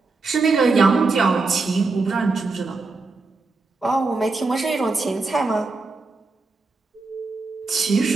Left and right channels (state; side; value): quieter; left; 3.8 dB